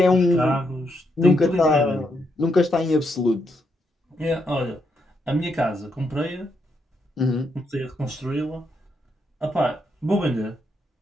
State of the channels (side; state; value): both; normal; correlation 0.79